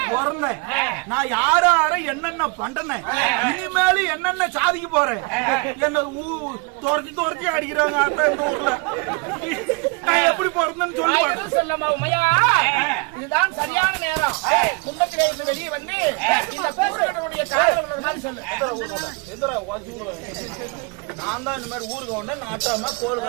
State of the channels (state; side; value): quieter; left; 30.2 dB